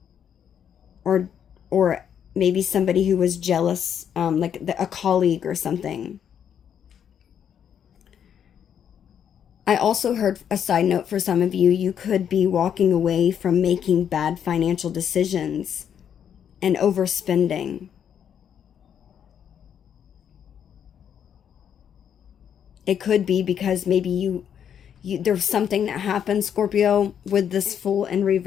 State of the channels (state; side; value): quieter; right; 8.6 dB